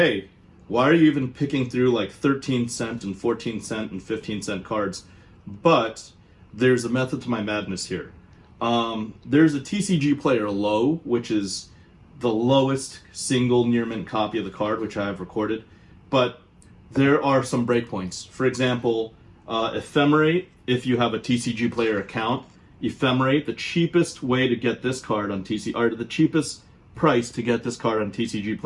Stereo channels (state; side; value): identical; both; correlation 1.00